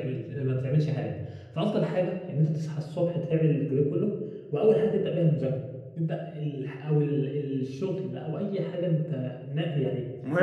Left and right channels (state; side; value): identical; both; correlation 1.00